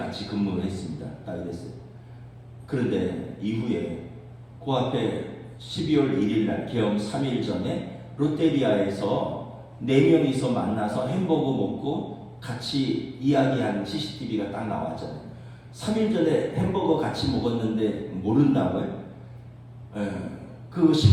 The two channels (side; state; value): both; identical; correlation 1.00